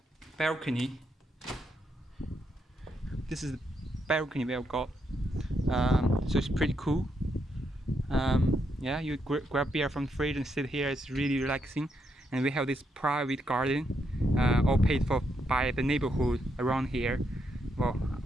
balcony. This is the balcony we have got. So it's pretty cool. You grab beer from the fridge and sit here. It's really relaxing. And we have this private garden, all paid for by the neighborhood around here. Well,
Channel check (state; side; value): normal; both; correlation 0.79